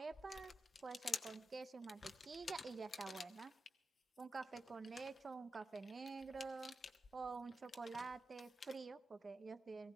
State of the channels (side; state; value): both; normal; correlation 0.89